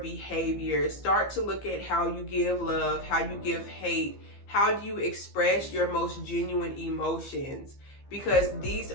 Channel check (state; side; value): late; right; 15 ms